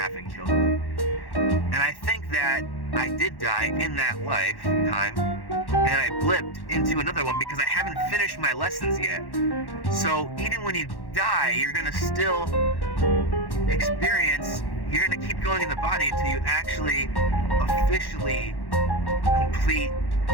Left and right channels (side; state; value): right; late; 1.1 ms